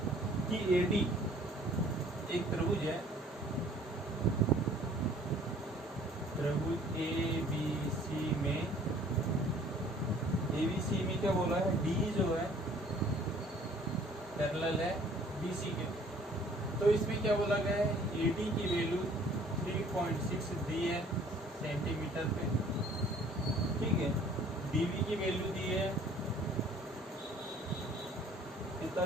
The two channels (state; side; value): normal; both; correlation 0.55